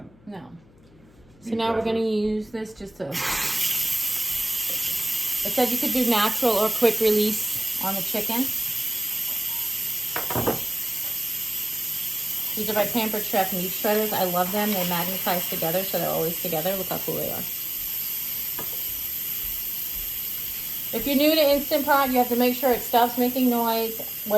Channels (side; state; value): left; noise; hum, 27 dB below the sound